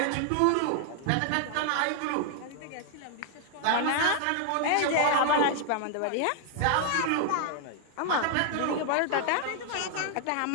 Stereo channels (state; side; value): different; both; correlation 0.00